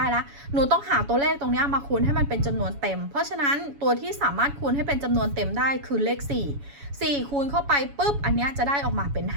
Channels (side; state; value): left; late; 7.1 ms